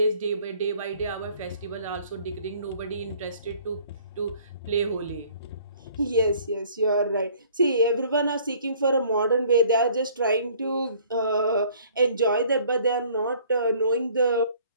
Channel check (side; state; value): both; inverted; correlation -0.56